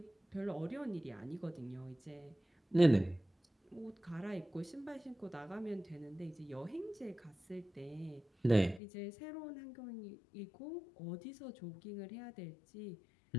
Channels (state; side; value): drops out; right; at 8.8 s